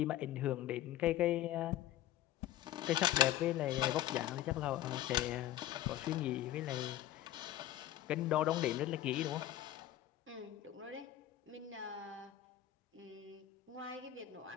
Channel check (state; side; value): quieter; right; 13.2 dB